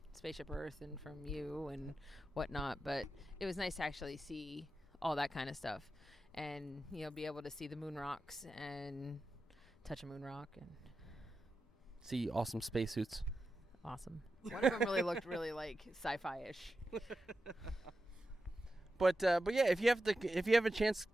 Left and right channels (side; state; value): both; normal; correlation 0.91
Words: Spaceship Earth and from you and whatnot, but it was nice to actually see all that kind of stuff and be able to see the moon rocks and touch a moon rock and see awesome spacesuits. Awesome. One of them really looked really like sci-fi-ish. But yeah, if you have a chance,